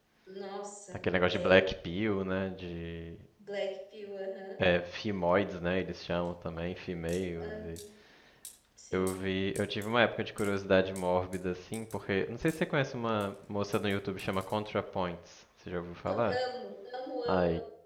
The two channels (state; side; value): identical; both; correlation 1.00